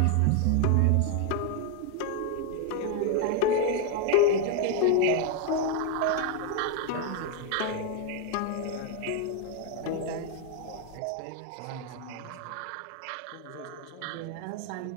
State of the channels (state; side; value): different; both; correlation 0.01